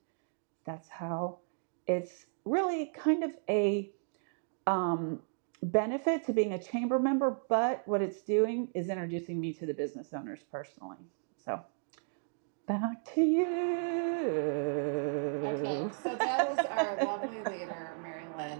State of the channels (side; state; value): left; silent; digital silence